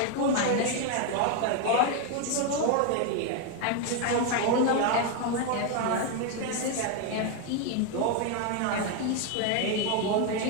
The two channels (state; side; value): different; both; correlation 0.01